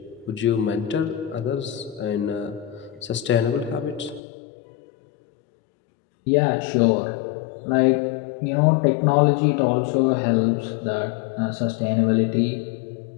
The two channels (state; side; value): drops out; right; at 4.2 s